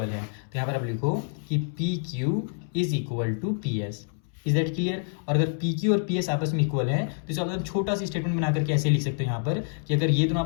है। तो यहाँ पर आप लिखो कि P Q is equal to P S. Is that clear? और अगर पी क्यू और पी एस आपस में इक्वल है तो इसका मतलब छोटा सी स्टेटमेंट बना करके ऐसे लिख सकते हो यहाँ पर कि अगर ये दोनों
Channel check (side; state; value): right; silent; 60 dB below the other